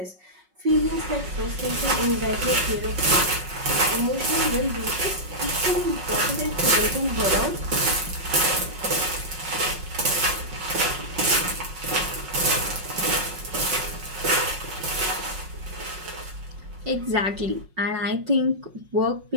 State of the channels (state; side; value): late; left; 5.4 ms